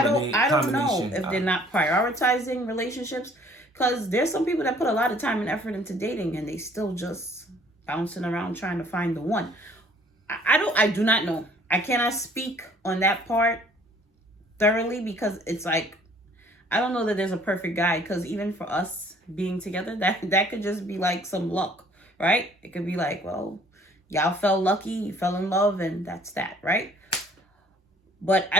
I don't know if they're not prioritizing relationships, because there's some people that put a lot of time and effort into dating and they still just bouncing around trying to find the one. I do not know. I cannot speak on that part thoroughly, because it's like, I don't know that there's a perfect guy, because even for us being together, that could just be like some luck, right? It could be like, well, y'all felt lucky, you fell in love, and that's that, right? But I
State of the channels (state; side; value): normal; both; correlation 0.57